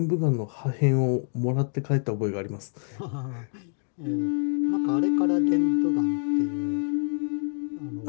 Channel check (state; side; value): silent; right; 61 dB below the other